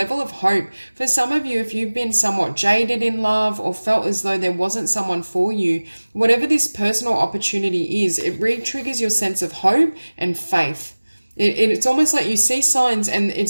of hope. For some of you, if you've been somewhat jaded in love or felt as though there wasn't someone for you, whatever this personal opportunity is, it re-triggers your sense of hope and faith. It's almost like you see signs and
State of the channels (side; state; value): both; inverted; correlation -1.00